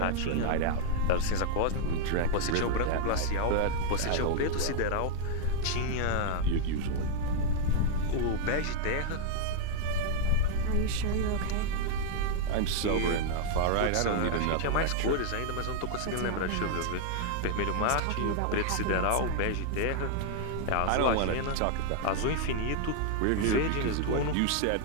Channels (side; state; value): both; different; correlation -0.01